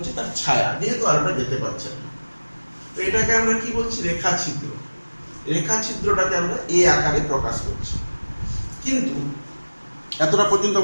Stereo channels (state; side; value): inverted; both; correlation -1.00